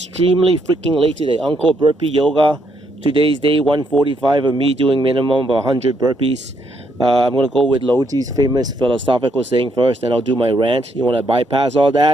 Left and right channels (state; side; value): normal; both; correlation 0.74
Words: freaking late today. Uncle Burpee Yoga. Today's day 145 of me doing minimum of 100 burpees. I'm going to go with Loji's famous philosophical saying first, and I'll do my rant. You want to bypass all